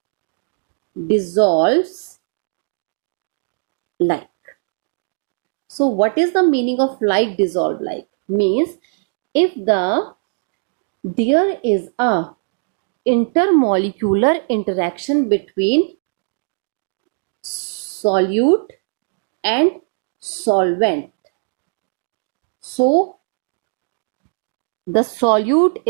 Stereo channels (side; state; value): left; silent; 66 dB below the other